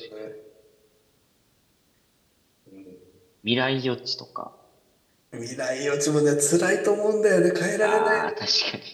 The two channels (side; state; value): both; identical; correlation 1.00